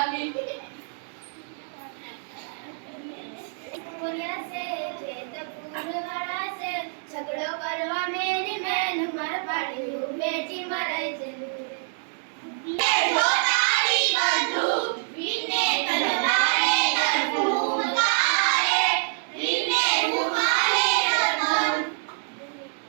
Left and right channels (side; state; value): left; silent; 61 dB below the other